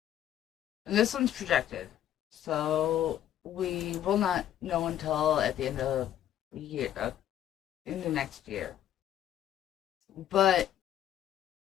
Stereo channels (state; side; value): quieter; right; 11.2 dB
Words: And this one's projected. So we will not know until at the end of the year, in the next year. But